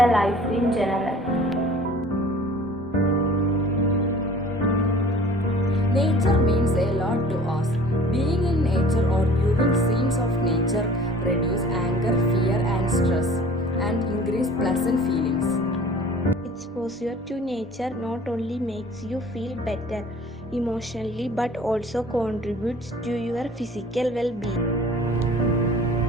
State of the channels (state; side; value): normal; both; correlation 0.48